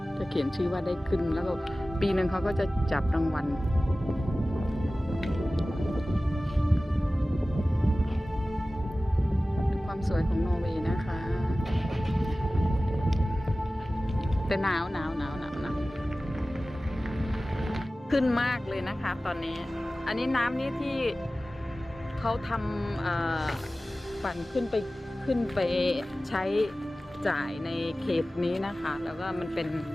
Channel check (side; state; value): both; normal; correlation 0.96